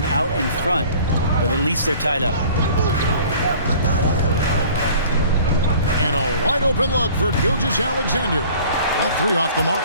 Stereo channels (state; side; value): inverted; both; correlation -0.49